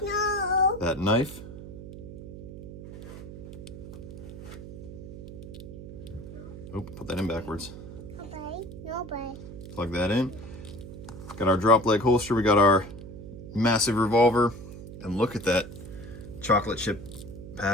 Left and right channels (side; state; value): right; noise; hum, 12 dB below the sound